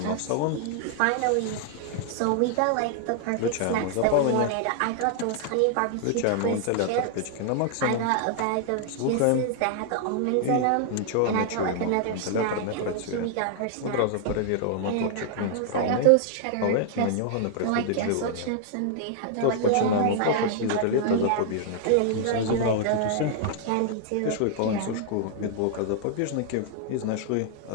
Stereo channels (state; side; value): different; both; correlation 0.00